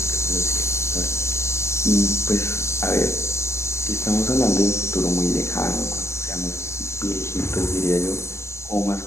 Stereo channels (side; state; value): right; late; 0.13 ms